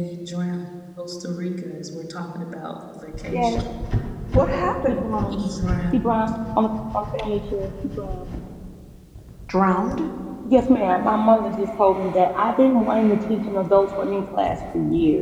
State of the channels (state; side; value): identical; both; correlation 1.00